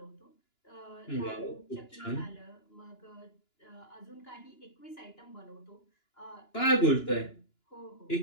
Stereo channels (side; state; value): right; late; 2.9 ms